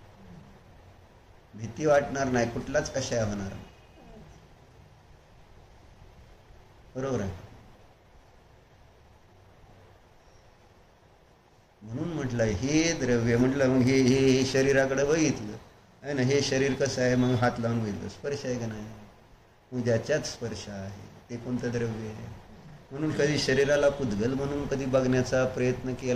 भीती वाटणार नाही, कुठलाच कशाय होणार नाही. बरोबर आहे. म्हणून म्हटलं हे द्रव्य, म्हटलं मग हे शरीराकडे बघितलं आहे ना, हे शरीर कसं आहे? मग हात लावून बघितलं, स्पर्श आहे का नाही? मग ज्याच्यात स्पर्श आहे ते कोणतं द्रव्य आहे? म्हणून कधी शरीराला पुद्गल म्हणून कधी बघण्याचा प्रयत्न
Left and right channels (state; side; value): identical; both; correlation 1.00